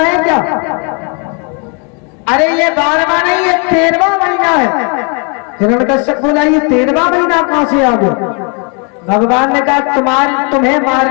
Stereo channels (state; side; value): quieter; right; 35.5 dB